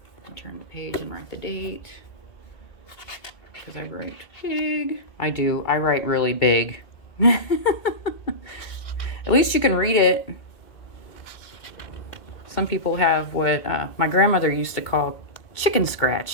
Turn the page and write the date. Because I write big. I do. I write really big. At least you can read it. Some people have what my grandmother used to call chicken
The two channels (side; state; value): right; late; 2.4 ms